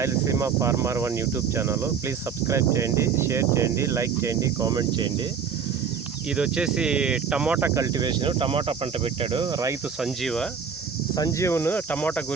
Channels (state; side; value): quieter; left; 6.6 dB